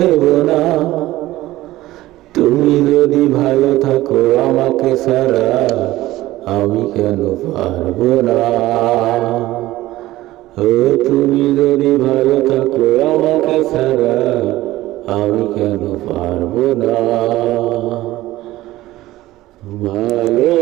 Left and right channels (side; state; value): left; quieter; 16.7 dB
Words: না। তুমি যদি ভালো থাকো আমাকে ছাড়া, আমি কেন পারবো না। ও তুমি যদি ভালো থাকো আমাকে ছাড়া, আমি কেন পারবো না। ভালো